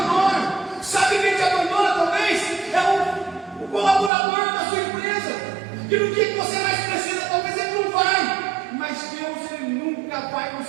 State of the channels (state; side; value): drops out; left; at 4.1 s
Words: Sabe quem te abandona? Talvez é o colaborador da sua empresa, que no dia que você mais precisa, talvez ele não vai. Mas Deus, Ele nunca vai